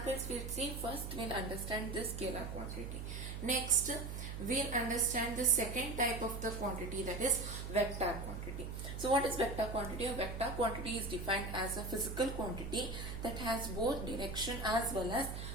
we'll see. First we'll understand this scalar quantity. Next we'll understand the second type of the quantity, that is vector quantity. So what is vector quantity? A vector quantity is defined as a physical quantity that has both direction as well as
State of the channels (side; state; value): right; noise; hum, 6 dB below the sound